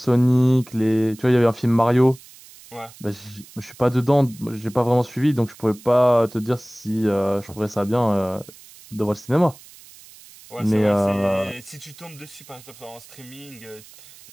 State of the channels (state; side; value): noise; right; hiss, 22 dB below the sound